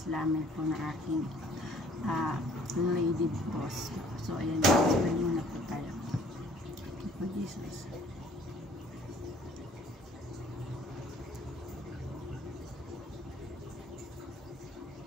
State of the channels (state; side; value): normal; both; correlation 0.56